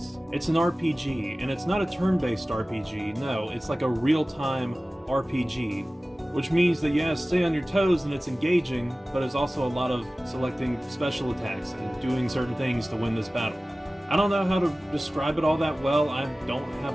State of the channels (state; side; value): normal; both; correlation 0.97